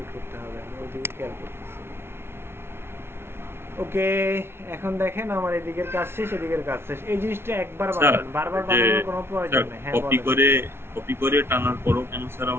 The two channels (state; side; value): late; left; 0.12 ms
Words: করতে হবে, আমি ওইদিকে খেয়াল করতেছি। ওকে এখন দেখেন আমার এদিকের কাজ শেষ, এদিকের কাজ শেষ। এই জিনিসটা একবার বানাবেন, বারবার বানানোর কোনো প্রয়োজন নেই। হ্যাঁ কপি করে টানার পরও কেন স্যার